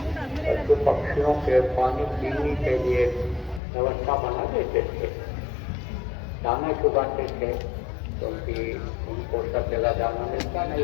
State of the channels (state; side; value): drops out; right; at 3.6 s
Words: पशु पक्षियों के पानी पीने के लिए व्यवस्था बना देते थे, दाना चुगाते थे, क्योंकि उनको सब जगह दाना मिलता